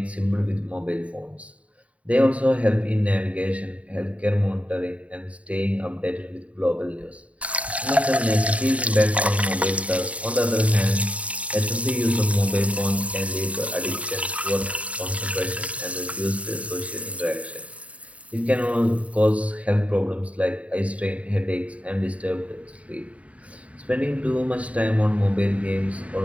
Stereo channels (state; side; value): late; left; 0.066 ms